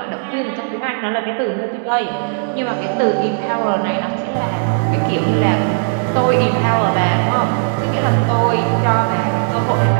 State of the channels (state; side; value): silent; left; digital silence